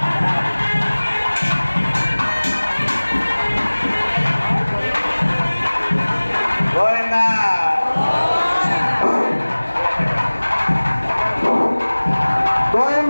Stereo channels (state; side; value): inverted; both; correlation -1.00